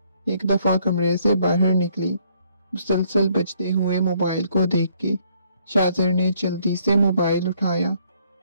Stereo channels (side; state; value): both; inverted; correlation -0.67